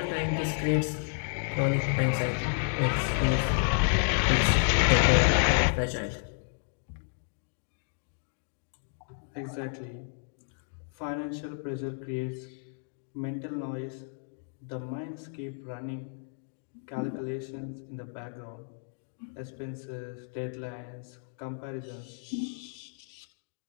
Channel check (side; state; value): right; silent; digital silence